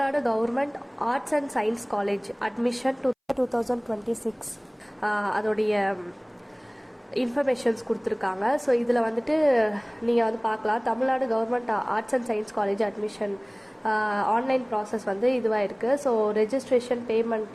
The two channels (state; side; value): identical; both; correlation 1.00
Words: government arts and science college admission 2026 அதோடைய இன்ஃபர்மேஷன்ஸ் கொடுத்துருக்காங்க. ஸோ இதில் வந்துட்டு நீங்கள் வந்து பார்க்கலாம், Tamil Nadu government arts and science college admission online process வந்து இதுவாக இருக்குது. ஸோ ரெஜிஸ்ட்ரேஷன்